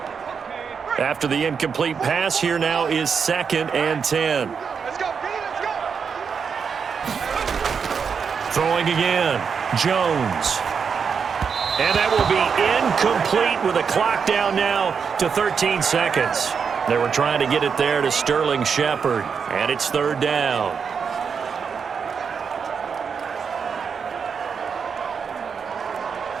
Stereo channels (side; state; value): left; quieter; 6.2 dB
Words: After the incomplete pass, here now is 2nd and 10. Let's go, let's go. Throwing again, Jones. And that will be incomplete with a clock down now to 13 seconds. They were trying to get it there to Sterling Shepard, and it's 3rd down.